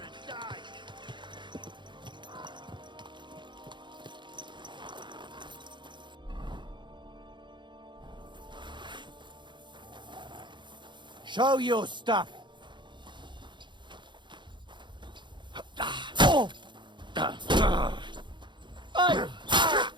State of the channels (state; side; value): late; left; 0.23 ms